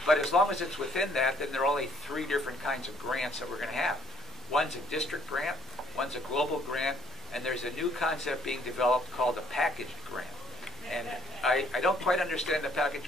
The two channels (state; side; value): normal; both; correlation 0.63